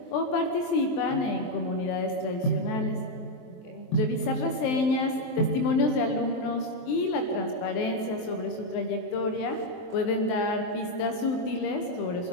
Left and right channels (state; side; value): late; right; 23 ms